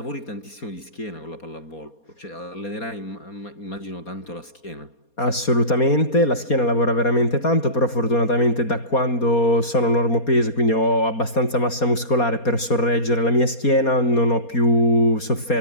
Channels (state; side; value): late; right; 4.2 ms